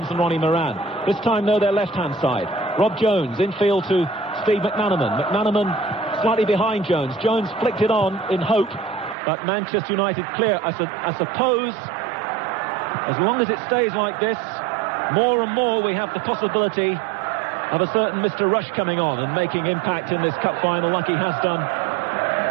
and Ronnie Moran. This time, though, their left-hand side. Rob Jones infield to Steve McManaman. McManaman slightly behind Jones. Jones flicked it on in hope, but Manchester United clear. I suppose, as long as it stays like this, more and more we have the possibility of a certain Mr. Rush coming on and making impact in this cup final like he has done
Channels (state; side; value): drops out; left; at 9.2 s